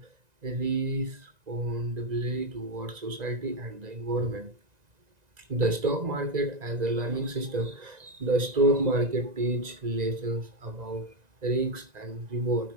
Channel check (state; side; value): late; left; 1.9 ms